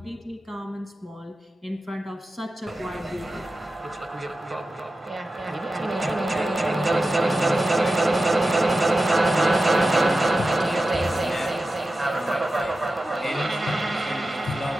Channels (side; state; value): both; normal; correlation 0.93